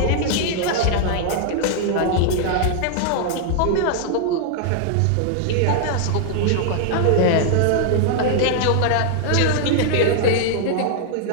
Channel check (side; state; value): both; different; correlation 0.00